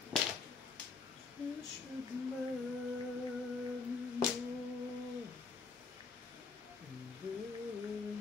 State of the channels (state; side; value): quieter; right; 4.5 dB